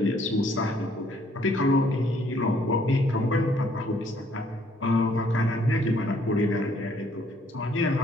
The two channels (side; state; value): both; normal; correlation 0.64